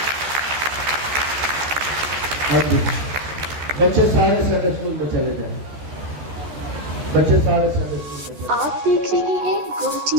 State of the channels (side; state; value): left; late; 14 ms